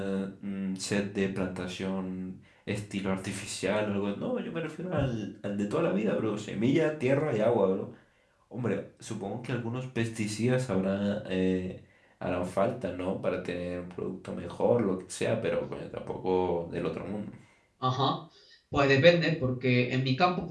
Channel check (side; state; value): both; identical; correlation 1.00